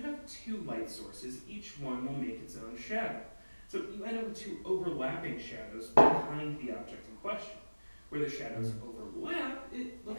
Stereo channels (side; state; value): both; inverted; correlation -1.00